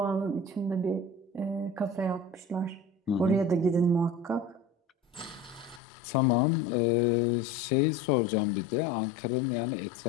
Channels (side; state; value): right; drops out; at 5.8 s